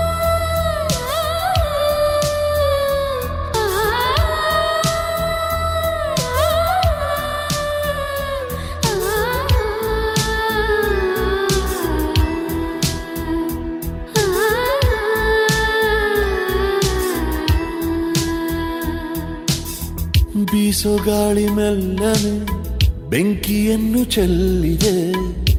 ಬೀಸೋ ಗಾಳಿ ಮೆಲ್ಲನೆ ಬೆಂಕಿಯನ್ನು ಚೆಲ್ಲಿದೆ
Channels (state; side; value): identical; both; correlation 1.00